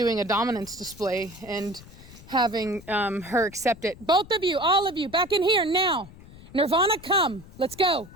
a dominance display and having her accept it. Both of you, all of you, back in here now. Nirvana, come. Let's go.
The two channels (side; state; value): left; noise; rumble, 19 dB below the sound